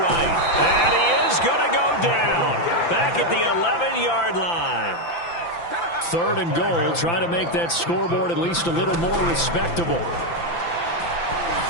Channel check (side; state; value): right; late; 5.9 ms